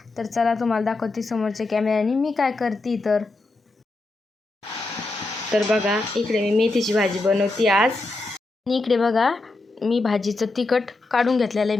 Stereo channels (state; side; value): quieter; right; 3.1 dB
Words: तर चला तुम्हाला दाखवते समोरच्या कॅमेऱ्याने मी काय करते. तर बघा, इकडे मी मेथीची भाजी बनवते आज. आणि इकडे बघा, मी भाजीचं तिखट काढून घेतलेलं